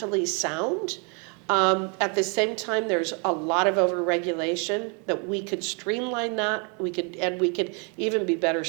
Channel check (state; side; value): quieter; left; 35.3 dB